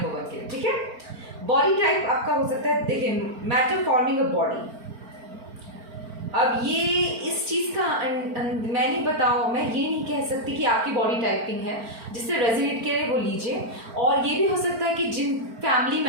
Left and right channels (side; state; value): left; late; 4.4 ms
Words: 1 के। ठीक है, बॉडी टाइप आपका हो सकता है, देखिए, मैटर फॉर्मिंग अ बॉडी। अब ये इस चीज का मैं नहीं बताओ, मैं ये नहीं कह सकती कि आपकी बॉडी टाइपिंग है। जिससे रेजोनेट करे वो लीजिए। और ये भी हो सकता है कि जिन फैमिली